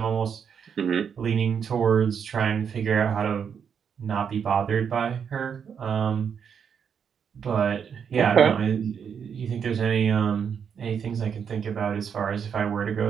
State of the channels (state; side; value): quieter; left; 7.3 dB